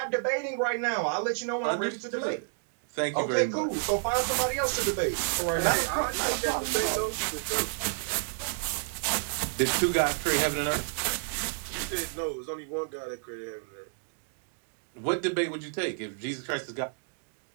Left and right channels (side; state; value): left; silent; digital silence